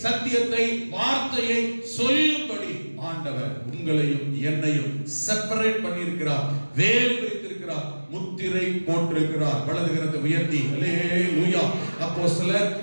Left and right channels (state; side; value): inverted; both; correlation -1.00